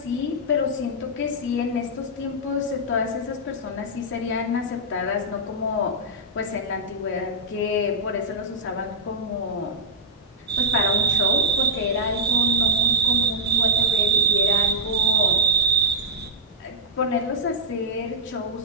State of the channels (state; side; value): normal; both; correlation -0.06